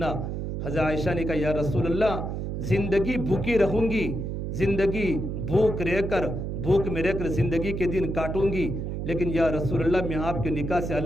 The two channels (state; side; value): noise; right; hum, 4 dB below the sound